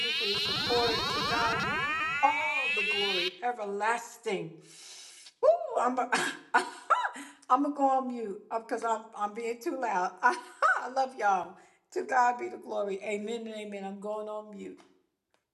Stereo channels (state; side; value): identical; both; correlation 1.00